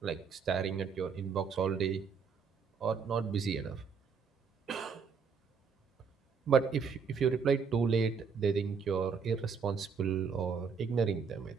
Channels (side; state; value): left; quieter; 6.0 dB